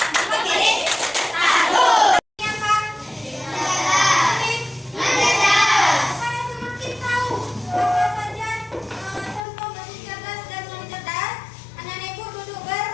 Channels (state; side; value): drops out; right; at 9.5 s